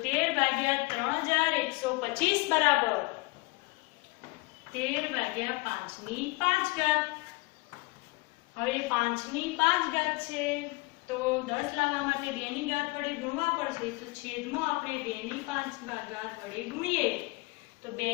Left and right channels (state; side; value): quieter; right; 25.0 dB